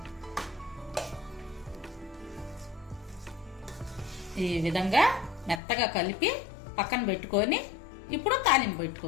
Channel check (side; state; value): right; drops out; at 5.6 s